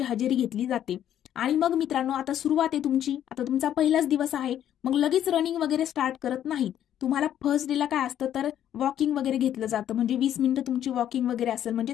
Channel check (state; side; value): quieter; right; 10.7 dB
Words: हजेरी घेतली जाते. आणि मग मित्रांनो आता सुरुवात आहे तुमची, आता तुमचा पहिलाच दिवस आहे, मग लगेच रनिंग वगैरे स्टार्ट करत नाहीत. तुम्हाला फर्स्ट डेला काय असतं तर वॉकिंग वगैरे घेतलं जातं, म्हणजे 20 मिनिटं तुमची वॉकिंग वगैरे असेल, म्हणजे